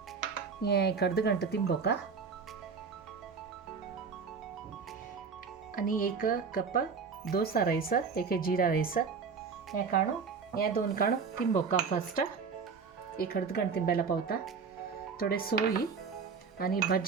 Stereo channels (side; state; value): left; quieter; 5.6 dB